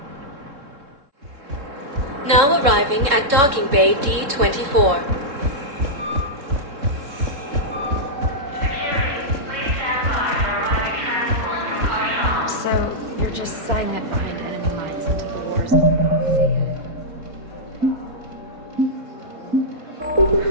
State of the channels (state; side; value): late; left; 3.6 ms